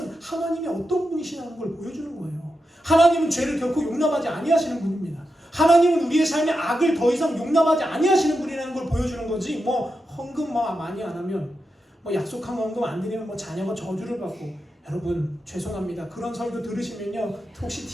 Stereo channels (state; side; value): normal; both; correlation 0.88